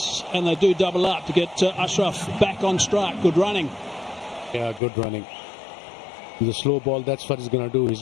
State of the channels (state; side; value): drops out; right; at 4.8 s